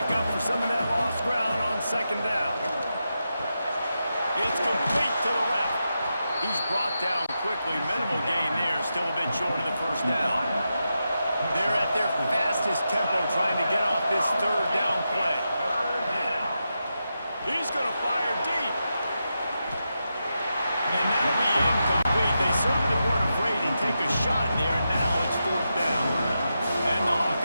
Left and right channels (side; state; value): both; inverted; correlation -0.88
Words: up for some of that lost ground on second down. It's complete to the left. He's brought down quickly. Minimal gain there. Still a bit short of the first down. They're at their fastest tempo trying to get off this third down play. He's going to fire deep. And that'll be incomplete. They certainly weren't afraid to take a shot there, and now it's fourth down. And the